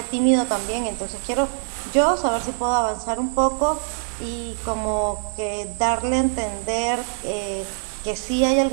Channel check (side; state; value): left; silent; 61 dB below the other